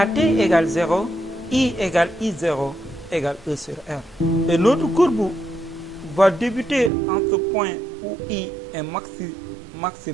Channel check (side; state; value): left; drops out; at 6.9 s